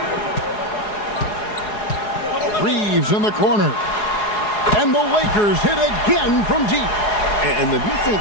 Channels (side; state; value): right; late; 4.8 ms